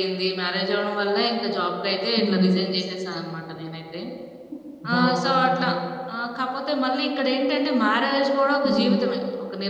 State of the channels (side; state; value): both; identical; correlation 1.00